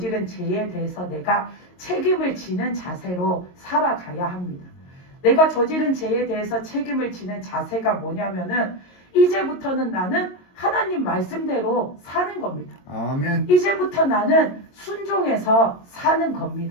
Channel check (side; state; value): right; late; 22 ms